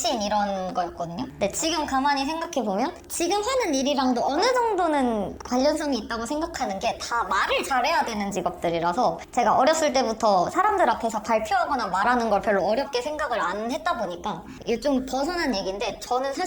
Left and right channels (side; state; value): both; identical; correlation 1.00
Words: 이런 거였거든요. 근데 지금 가만히 생각해보면 지금 하는 일이랑도 어느 정도는 관련성이 있다고 생각하는 게 다 말을 잘해야 되는 직업들이라서, 제가 어렸을 때부터 사람들 앞에서 발표하거나 말하는 걸 별로 어렵게 생각을 안 했다 보니까, 이게 좀 벗어난 얘기인데, 저는